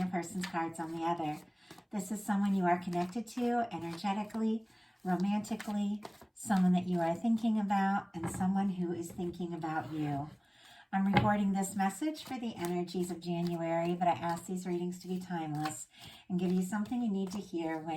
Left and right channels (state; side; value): identical; both; correlation 1.00